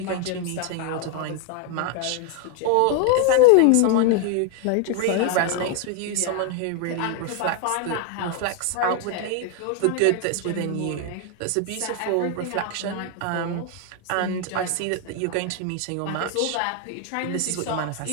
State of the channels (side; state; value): both; different; correlation 0.00